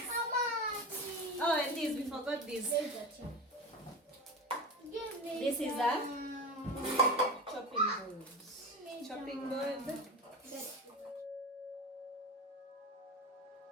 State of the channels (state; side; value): normal; both; correlation 0.25